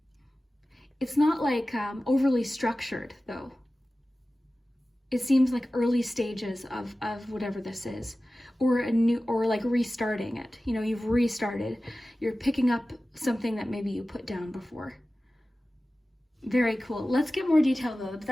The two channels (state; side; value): normal; both; correlation 0.96